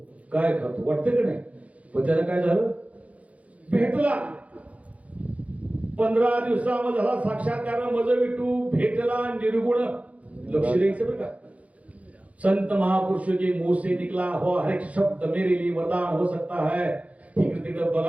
काय खातो, वाटतं की नाही. पण त्याला काय झालं, भेटला. 15 दिवसामध्ये झाला साक्षात्कार. मज विठू भेटला निर्गुण. लक्ष द्यायचं बरं का. संत महापुरुष के मुंह से निकला हो हर एक शब्द मेरे लिए वरदान हो सकता है. इकडे तिकडे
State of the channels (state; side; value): late; left; 0.066 ms